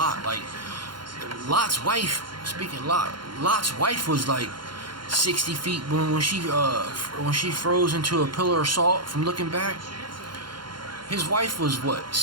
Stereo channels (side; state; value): left; late; 0.72 ms